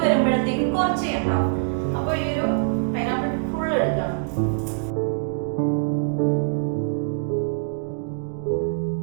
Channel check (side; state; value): left; silent; digital silence